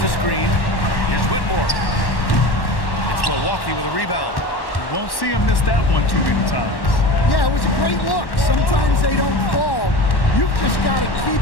a screen. Here's Whitmore. It's Milwaukee with a rebound. Won't see him miss that one too many times. Yeah, it was a great look. Sometimes they don't fall. You've just got to keep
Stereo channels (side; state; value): right; late; 1.1 ms